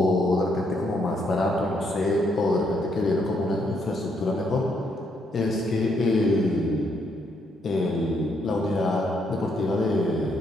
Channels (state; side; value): normal; both; correlation 0.74